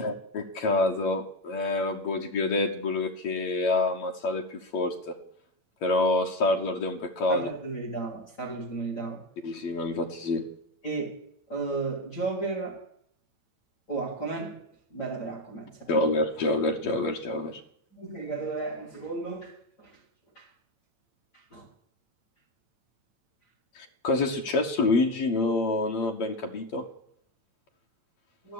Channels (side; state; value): right; late; 8.9 ms